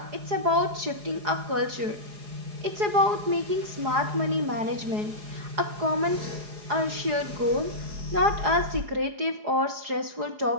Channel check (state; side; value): late; left; 4.8 ms